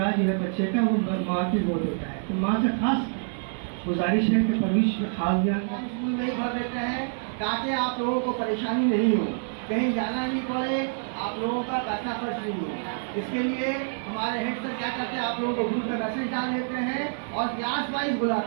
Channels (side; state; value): left; silent; digital silence